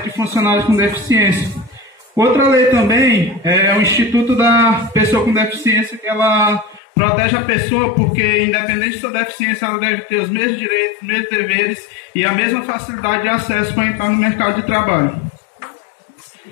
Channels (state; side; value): drops out; right; at 6.8 s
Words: de funcionários com deficiência. Outra lei também é o Instituto da Pessoa com Deficiência, que ela protege a pessoa porque, independente de sua deficiência, ela deve ter os mesmos direitos, os mesmos deveres e a mesma facilidade de acesso para entrar no mercado de trabalho.